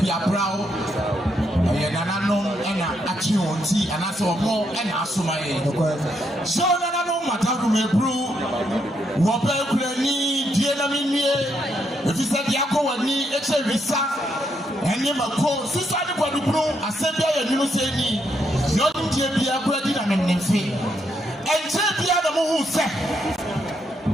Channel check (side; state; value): both; normal; correlation 0.77